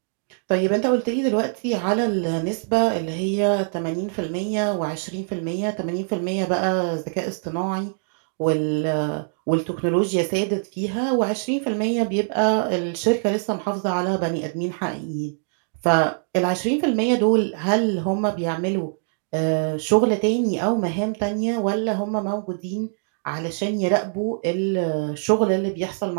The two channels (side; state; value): left; silent; digital silence